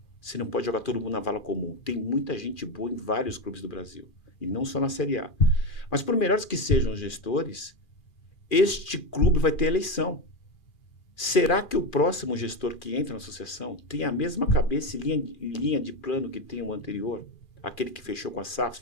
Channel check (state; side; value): late; right; 2.4 ms